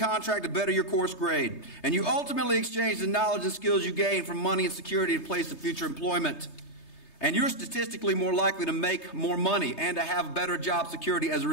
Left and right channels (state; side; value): late; right; 3.3 ms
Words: the better your course grade. And you ultimately exchange the knowledge and skills you gain from money and security in place of future employment. And you're statistically more likely to make more money and to have better job security as a